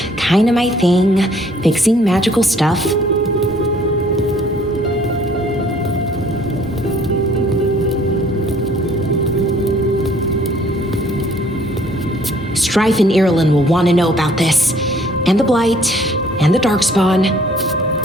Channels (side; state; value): both; normal; correlation 0.59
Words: kinda my thing, fixing magical stuff. Strife and Ireland will want to know about this. And the Blight, and the Darkspawn.